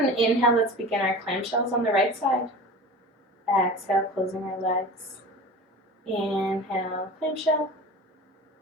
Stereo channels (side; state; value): both; normal; correlation 0.35